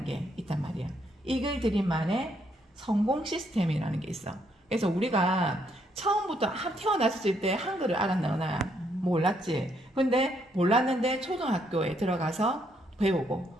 게 있단 말이야. 이글드림만의 성공 시스템이라는 게 있어. 그래서 우리가 처음부터 태어났을 때 한글을 알았나? 몰랐지. 근데 몰랐는데 초등학교에 들어가서 배우고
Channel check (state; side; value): normal; both; correlation 0.73